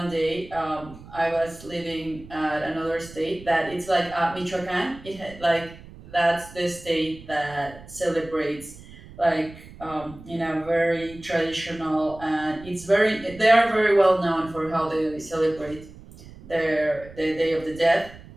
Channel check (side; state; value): right; noise; rumble, 18 dB below the sound